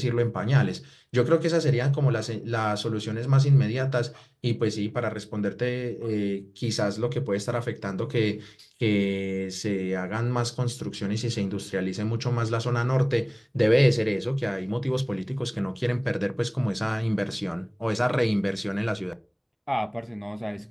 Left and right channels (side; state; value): both; identical; correlation 1.00